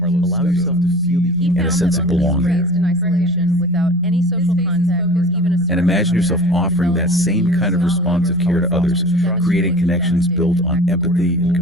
allow yourself to feel the He and a found sense that of those belonging. raised in isolation without any social contact or even a And imagine yourself offering that same kind of responsive care to others, creating connections built on empathy and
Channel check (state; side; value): normal; both; correlation 0.40